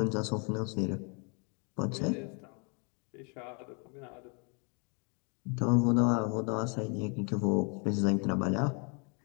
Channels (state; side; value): quieter; right; 35.9 dB